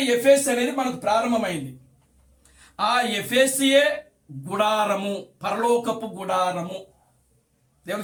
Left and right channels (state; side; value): identical; both; correlation 1.00